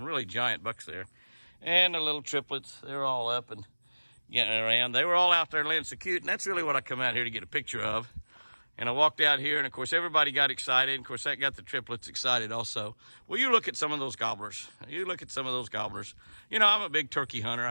really giant bucks there. And the little triplets, they're all up and getting around. They were all out there laying so cute, and that's really what I come out here to get a picture of. And I walked out here, and of course everybody got excited. Of course that got the triplets excited also. Well, you look at some of those gobblers. You look at some of those gobblers. You know, I'm a big turkey hunter.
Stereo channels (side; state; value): both; inverted; correlation -1.00